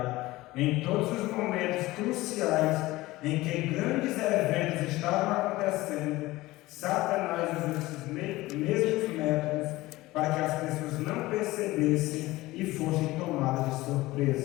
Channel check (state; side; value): quieter; right; 18.8 dB